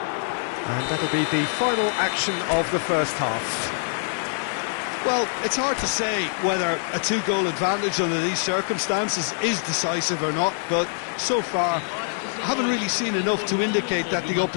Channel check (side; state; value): right; silent; digital silence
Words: And that'll be the final action of the first half. Well, it's hard to say whether a 2-goal advantage under these circumstances is decisive or not, but so far I haven't really seen enough to indicate that the